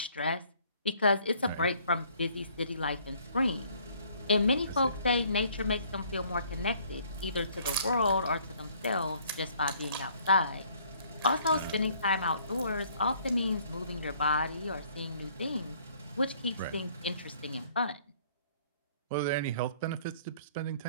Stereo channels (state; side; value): inverted; both; correlation -0.60